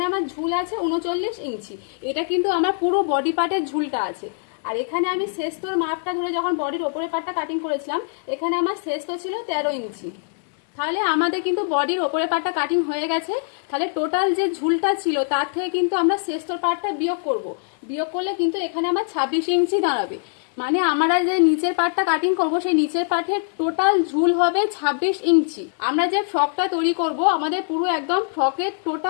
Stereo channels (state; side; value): silent; right; digital silence